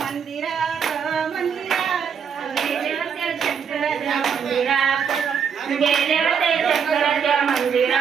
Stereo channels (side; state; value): left; quieter; 7.0 dB